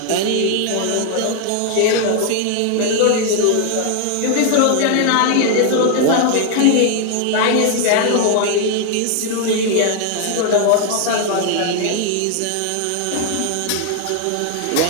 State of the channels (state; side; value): different; both; correlation 0.00